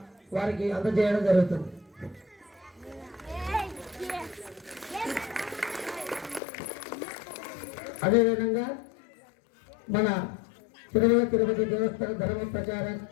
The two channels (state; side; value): drops out; right; at 6.4 s